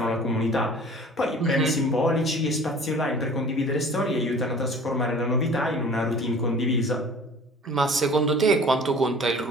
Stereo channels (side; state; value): both; normal; correlation 0.46